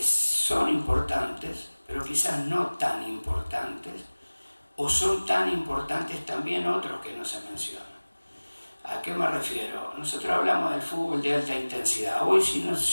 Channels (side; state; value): both; inverted; correlation -1.00